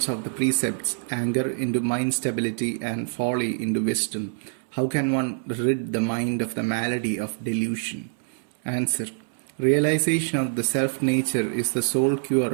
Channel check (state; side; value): silent; left; 62 dB below the other